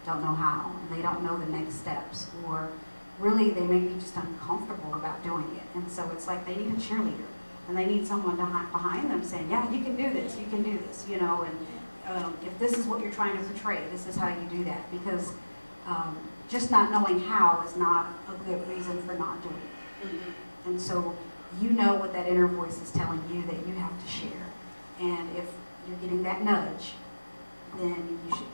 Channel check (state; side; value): inverted; both; correlation -1.00